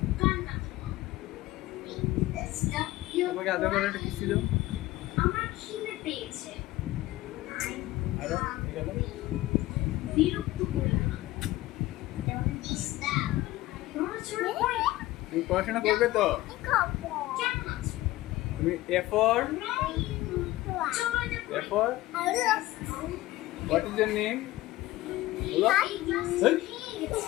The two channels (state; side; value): quieter; right; 17.1 dB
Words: পাপ্পাকে আদর করে একটা কিস দাও। আমার খিদে পেয়েছে। আরো গেল। বিরক্ত করো না। তুমি পড়াশোনা করবে তো? কেমন আছো? তুমি A for A for what is your name? বলো। এই,